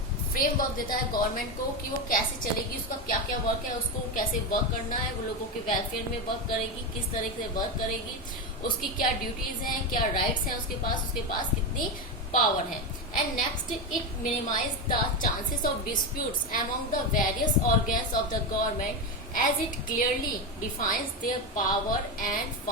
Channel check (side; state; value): both; normal; correlation 0.13